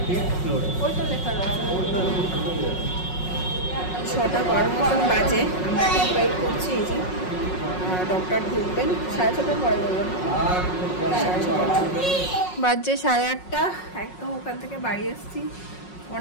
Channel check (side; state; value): right; late; 5.5 ms